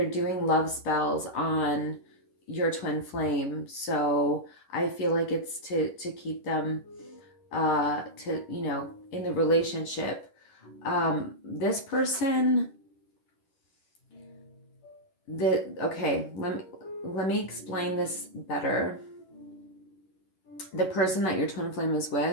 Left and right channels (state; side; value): late; right; 11 ms